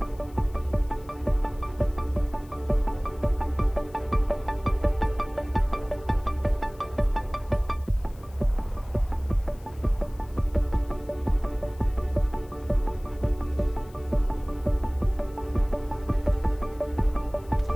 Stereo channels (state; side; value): noise; left; hiss, 27 dB below the sound